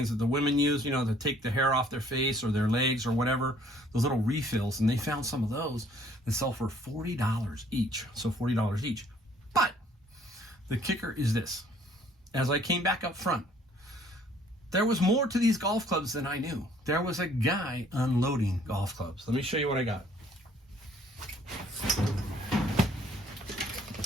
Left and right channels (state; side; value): normal; both; correlation 0.60